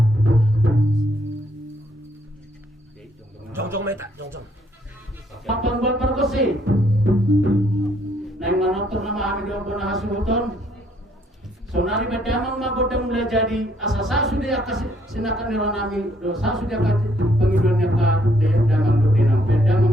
Jong meta, jong. Papan buat perkusi. Neng manonton nama kami doang pernah hasuton. Sonari bedamang magodang mulai jadi asa saya sudah kasih sinakan nilai nami dosa sudah kasih pengiduannya ke damang do dinam bedamang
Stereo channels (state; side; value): normal; both; correlation 0.68